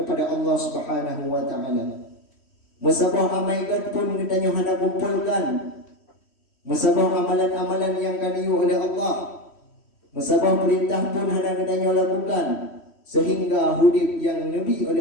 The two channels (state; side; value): late; right; 3.1 ms